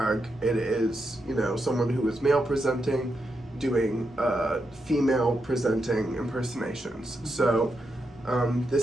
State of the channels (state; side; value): normal; both; correlation 0.84